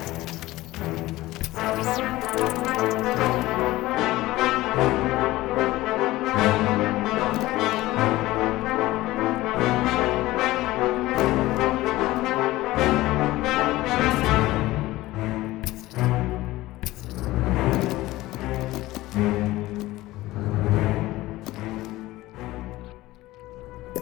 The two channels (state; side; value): quieter; right; 17.7 dB